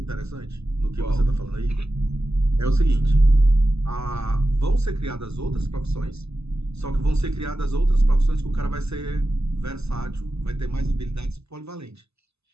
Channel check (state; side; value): late; left; 0.80 ms